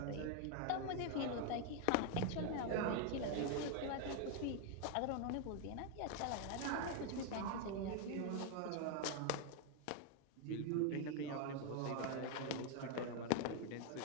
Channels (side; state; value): both; different; correlation 0.01